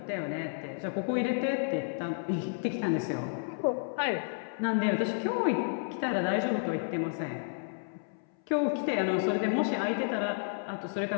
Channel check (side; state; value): right; silent; 57 dB below the other